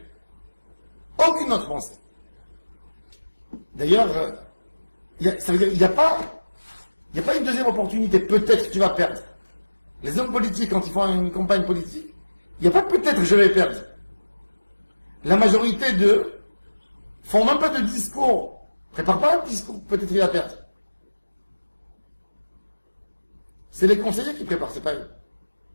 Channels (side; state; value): both; inverted; correlation -1.00